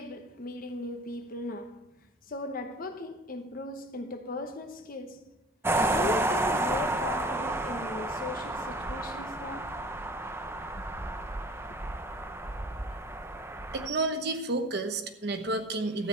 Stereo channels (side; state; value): both; normal; correlation 0.43